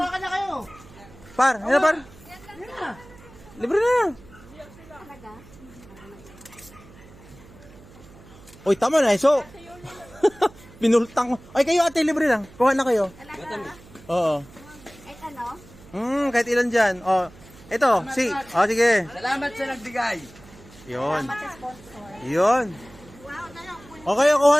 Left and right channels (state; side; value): noise; right; hum, 22 dB below the sound